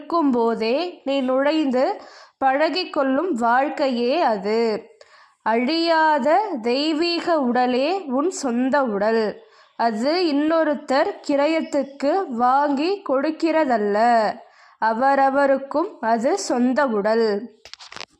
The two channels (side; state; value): both; identical; correlation 1.00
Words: நீ நுழைந்து பழகிக்கொள்ளும் வாழ்க்கையே அது. அழியாத தெய்வீக உடலே உன் சொந்த உடல். அது இன்னொருத்தர் கிரயத்துக்கு வாங்கி கொடுக்கிறதல்ல, அவரவருக்கும் அது சொந்த உடல்